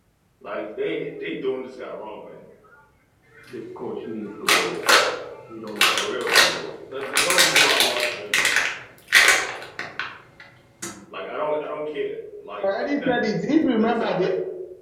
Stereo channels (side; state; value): both; identical; correlation 1.00